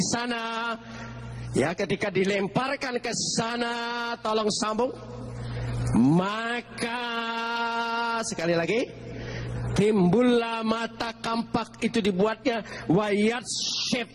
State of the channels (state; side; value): identical; both; correlation 1.00